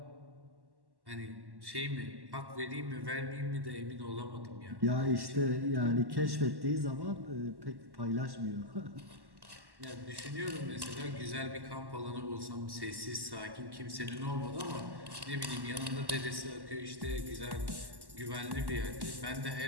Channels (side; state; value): left; late; 1.1 ms